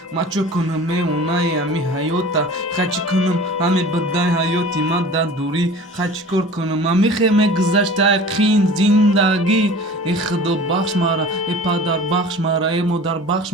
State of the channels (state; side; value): normal; both; correlation 0.41